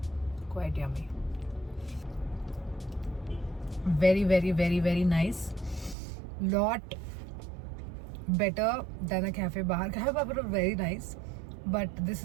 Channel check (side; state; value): left; drops out; at 6.0 s